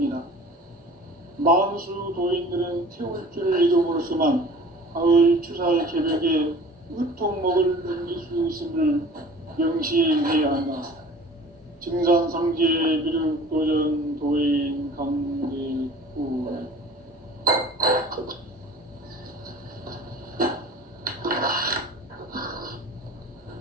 만수 도인들은 태울 줄을 이름으로서만 가을 추살 개벽에 으통목을 넘길 수 있음을 명시해야 한다. 증산상제 비륵 도전 도인 강대구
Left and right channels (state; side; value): normal; both; correlation 0.44